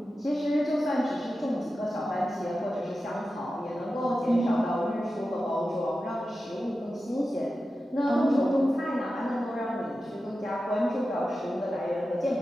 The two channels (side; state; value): both; normal; correlation 0.92